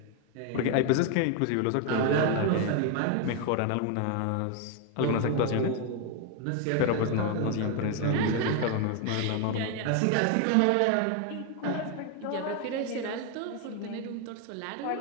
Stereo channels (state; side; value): different; both; correlation 0.01